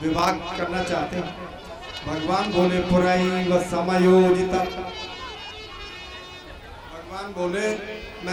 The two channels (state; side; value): identical; both; correlation 1.00